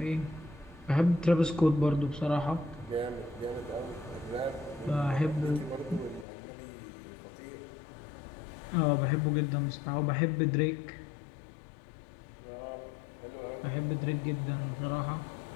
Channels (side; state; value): right; drops out; at 6.2 s